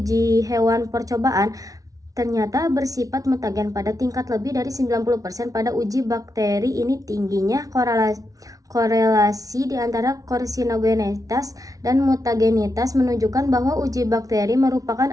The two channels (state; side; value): late; left; 0.18 ms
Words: hewan percobaan ternyata bersifat mutagen pada tingkat lebih dari 90%. Pada uji bakteri ini tingginya korelasi di antara karsinogenitas dan mutagenitas menunjukkan bahwa uji bakteri merupakan